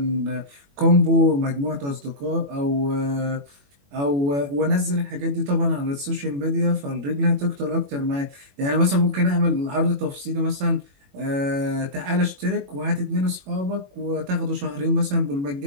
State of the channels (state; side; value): late; left; 21 ms